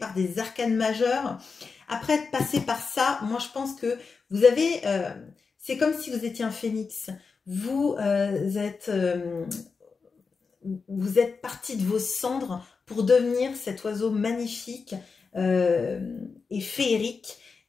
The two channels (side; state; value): right; quieter; 4.9 dB